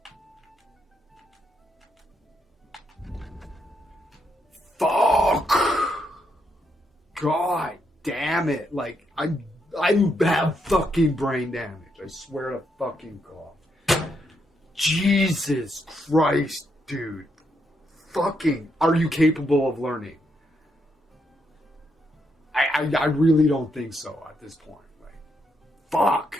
Fuck! God damn it. Like, I have fucking brain damage. I swear to fucking God. Jesus Christ, dude. Fucking, are you capable of learning? I really don't think so at this point. Like, fuck.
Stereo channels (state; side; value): normal; both; correlation 0.79